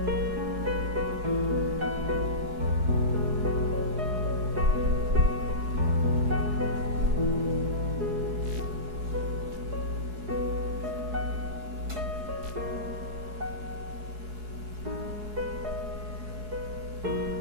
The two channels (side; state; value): left; late; 4.7 ms